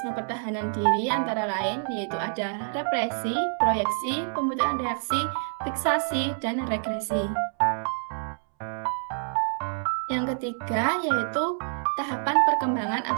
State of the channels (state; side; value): silent; left; 60 dB below the other